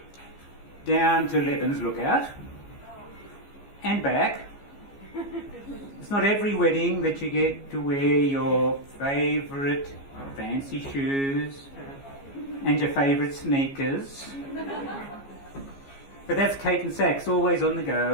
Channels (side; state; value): right; late; 15 ms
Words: down to Leban's Lookout and back. It's not every wedding that you get to wear your favourite fancy shoes and your favourite sneakers. But that's Kate and Sax, always on the